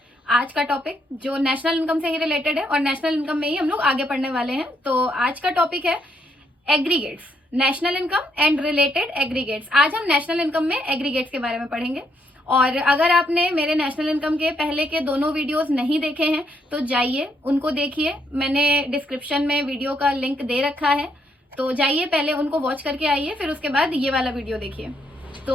आज का टॉपिक जो नेशनल इनकम से ही रिलेटेड है और नेशनल इनकम में ही हम लोग आगे पढ़ने वाले हैं। तो आज का टॉपिक है aggregates, national income and related aggregates. आज हम नेशनल इनकम में एग्रीगेट्स के बारे में पढ़ेंगे। और अगर आपने मेरे नेशनल इनकम के पहले के दोनों वीडियोस नहीं देखे हैं तो जाइए उनको देखिए। मैंने डिस्क्रिप्शन में वीडियो का लिंक दे रखा है, तो जाइए पहले उनको वॉच करके आइए, फिर उसके बाद ये वाला वीडियो देखिए।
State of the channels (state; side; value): normal; both; correlation 0.74